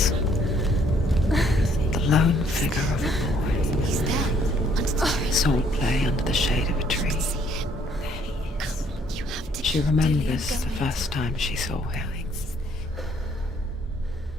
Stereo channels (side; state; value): both; normal; correlation 0.65